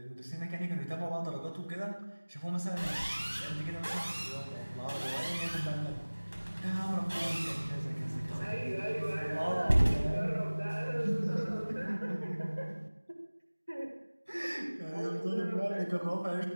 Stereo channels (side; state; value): both; inverted; correlation -1.00